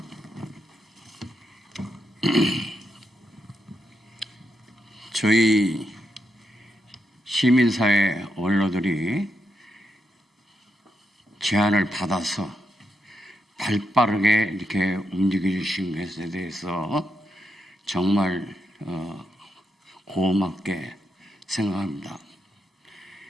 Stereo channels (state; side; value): normal; both; correlation 0.82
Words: 저희 시민사회 원로들이 제안을 받아서 발빠르게 이렇게 움직여 주신 것에 대해서 정말 고맙게 생각합니다.